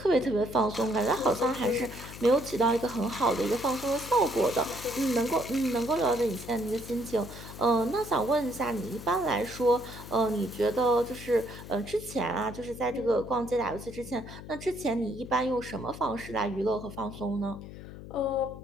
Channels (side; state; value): left; noise; hum, 13 dB below the sound